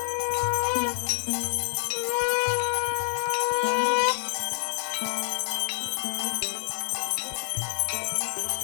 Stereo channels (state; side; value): silent; right; digital silence